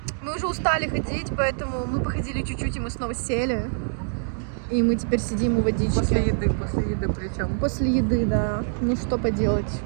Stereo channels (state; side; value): silent; left; digital silence